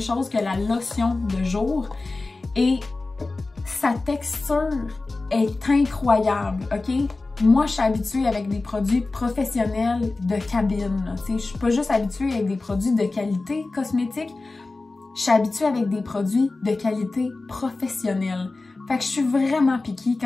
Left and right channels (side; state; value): right; quieter; 3.4 dB